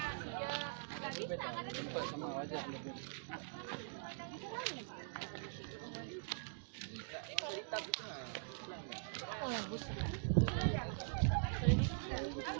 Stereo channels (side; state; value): left; silent; digital silence